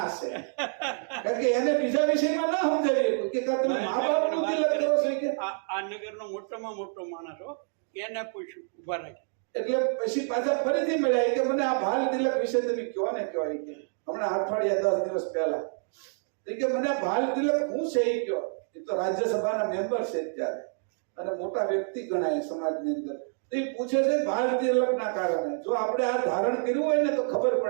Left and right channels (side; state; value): left; silent; 59 dB below the other